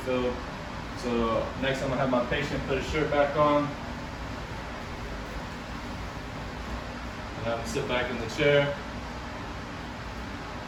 So next I'm going to have my patient put his shirt back on. And I'm going to sit back in the chair.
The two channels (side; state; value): both; identical; correlation 1.00